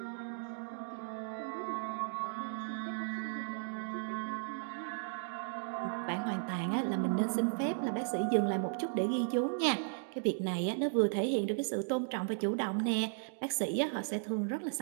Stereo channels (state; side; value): silent; left; digital silence